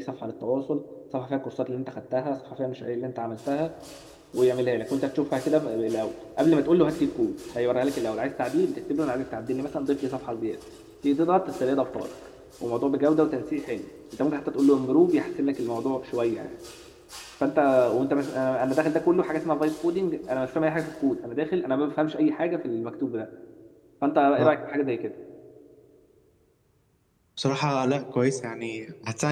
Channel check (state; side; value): identical; both; correlation 1.00